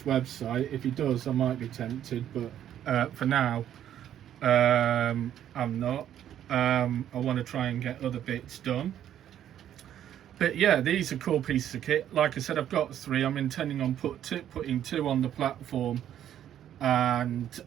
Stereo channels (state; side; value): quieter; left; 10.7 dB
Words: website. If he does, I might be tempted, but for now I'm not. I want to try and get other bits done. But yeah, these are cool pieces of kit. Like I said, I've got 3. I'm intending on putting 2 on the platform and